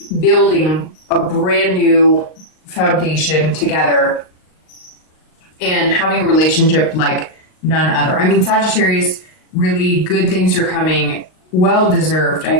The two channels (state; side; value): late; right; 38 ms